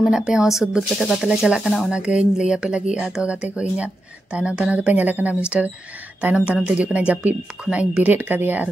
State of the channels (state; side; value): normal; both; correlation 0.88